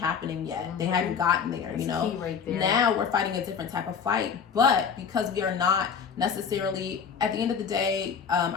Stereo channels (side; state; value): right; quieter; 6.6 dB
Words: yet. They hadn't gotten there. Key right there. Now we're fighting a different type of fight, but because we are not necessarily at the end of the day,